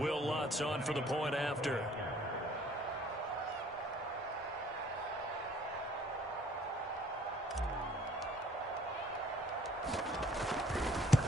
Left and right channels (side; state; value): both; normal; correlation 0.57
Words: Lutz on for the point after.